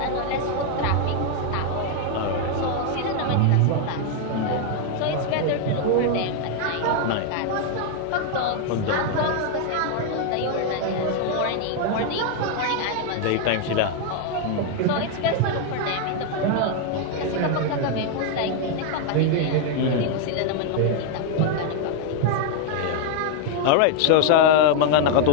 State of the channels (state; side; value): different; both; correlation 0.00